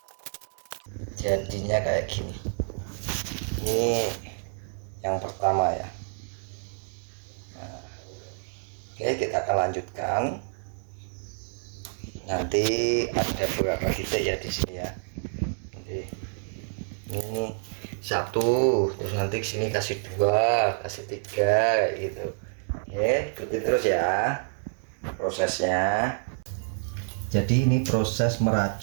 Jadinya kayak gini. Ini yang pertama ya. Nah, oke, kita akan lanjutkan. Nanti ada beberapa titik ya di sini ya. Oke. Ini satu, terus nanti sini kasih 2, kasih 3 gitu. Oke, ikuti terus ya prosesnya. Jadi ini proses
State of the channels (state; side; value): silent; left; digital silence